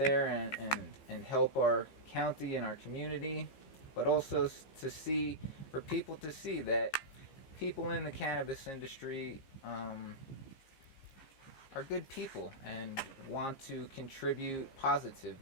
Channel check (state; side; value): late; right; 15 ms